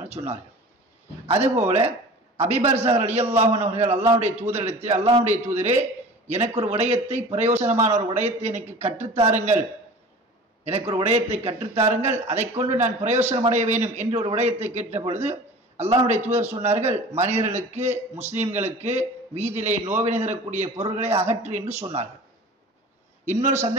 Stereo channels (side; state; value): both; normal; correlation 0.40